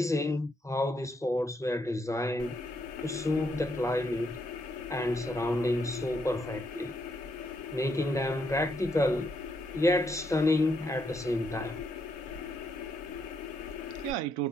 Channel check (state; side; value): normal; both; correlation 0.76